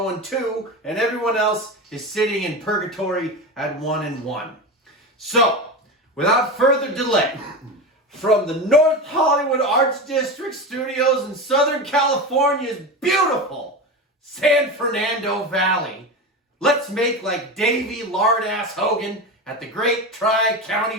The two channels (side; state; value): both; normal; correlation 0.23